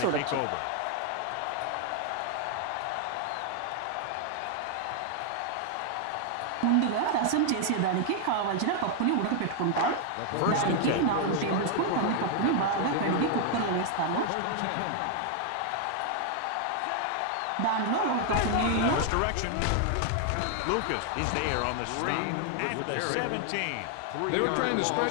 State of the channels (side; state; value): both; different; correlation 0.00